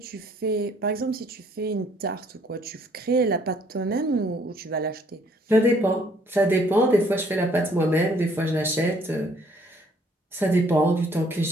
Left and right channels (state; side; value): normal; both; correlation 0.63